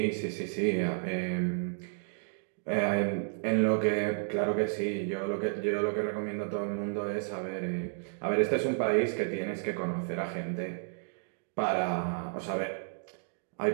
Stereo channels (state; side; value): silent; left; digital silence